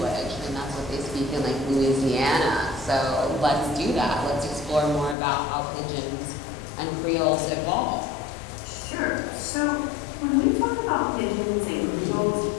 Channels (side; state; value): right; drops out; at 5.2 s